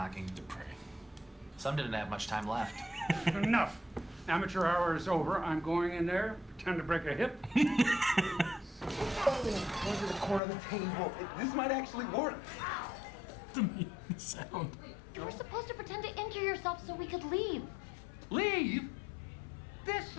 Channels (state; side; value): drops out; right; at 10.4 s